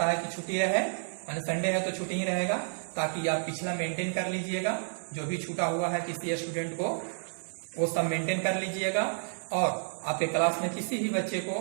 है कि छुट्टी रहे, यानी संडे है तो छुट्टी ही रहेगा, ताकि आप पिछला मेंटेन कर लीजिएगा। जो भी छूटा हुआ है किसी स्टूडेंट को वो सब मेंटेन कर लीजिएगा। और आपके क्लास में किसी भी बच्चे को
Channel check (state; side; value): silent; left; digital silence